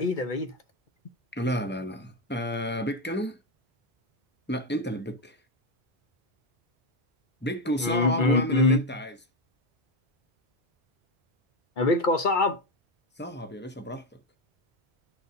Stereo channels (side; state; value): both; normal; correlation 0.10